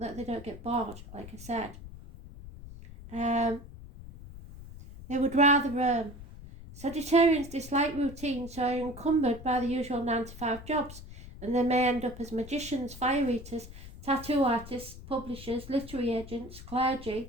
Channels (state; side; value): noise; left; rumble, 15 dB below the sound